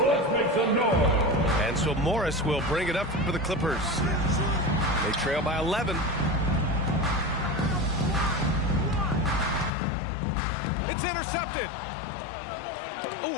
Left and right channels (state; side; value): drops out; right; at 9.7 s